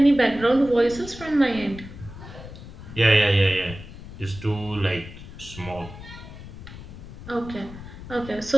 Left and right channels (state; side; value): noise; left; rumble, 14 dB below the sound